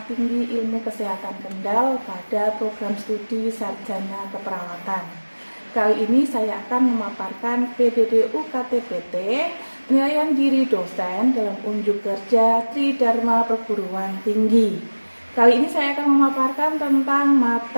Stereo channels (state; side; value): inverted; both; correlation -1.00